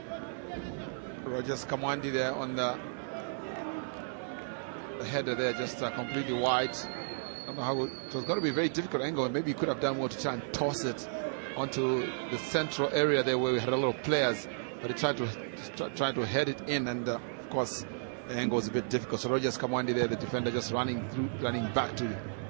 Just Kamwandi there on the header there, just completely wide. I don't know how it was going to be a very difficult angle, and maybe he could have done more to try and toss it onto the central area there where we had a lot of players, but he tried to head it in, and of course the angle was a bit difficult. So Rogers Kamwandi there, the defender, just running back to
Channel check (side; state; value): left; silent; 56 dB below the other